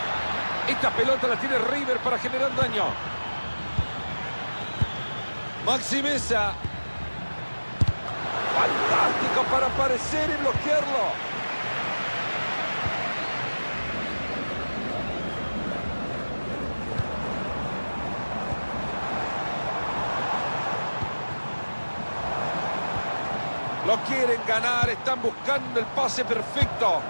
Esta pelota la tiene River para generar daño. Maxi Mesa. Fantástico para aparecer y bloquearlo. Lo quieren ganar, están buscando el pase perfecto.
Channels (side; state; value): both; inverted; correlation -1.00